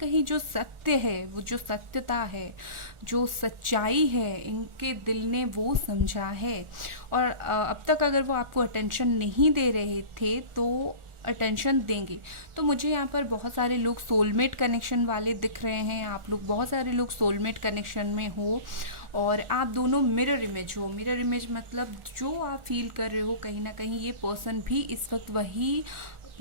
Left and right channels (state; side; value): late; left; 1.4 ms